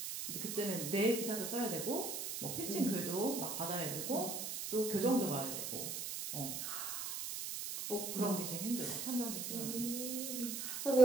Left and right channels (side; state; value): right; noise; hiss, 4 dB below the sound